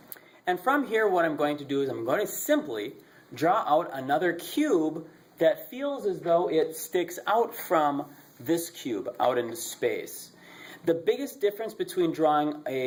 And from here what I'm going to do is I'm going to simply draw out another cube that feels as though it sticks out from this cube out into space. The biggest difference between drawing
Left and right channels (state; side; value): identical; both; correlation 1.00